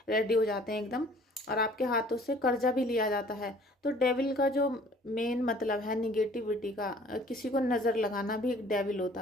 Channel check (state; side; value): normal; both; correlation 0.53